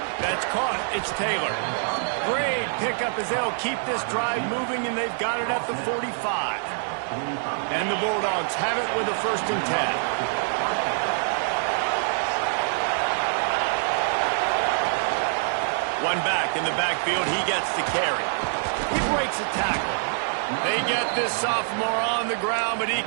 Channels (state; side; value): silent; left; digital silence